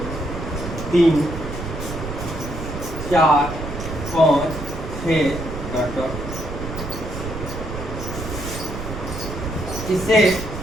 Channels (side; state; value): right; noise; rumble, 7 dB below the sound